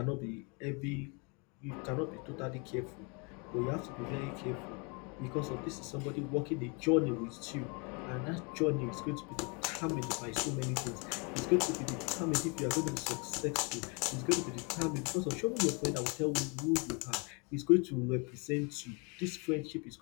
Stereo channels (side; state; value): right; quieter; 32.6 dB